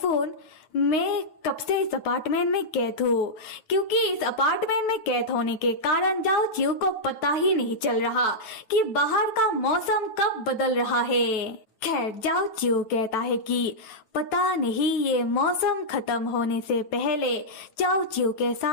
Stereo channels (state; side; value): late; right; 9.2 ms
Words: मैं कब से इस अपार्टमेंट में कैद हूँ, क्योंकि इस अपार्टमेंट में कैद होने के कारण जाओ चिऊ को पता ही नहीं चल रहा कि बाहर का मौसम कब बदल रहा है। खैर जाओ चिऊ कहता है कि पता नहीं ये मौसम खत्म होने से पहले जाओ चिऊ के